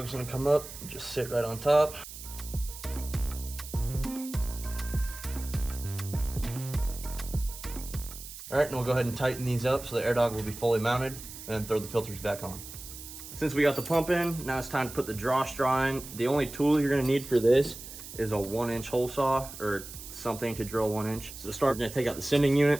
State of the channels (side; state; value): right; noise; hiss, 13 dB below the sound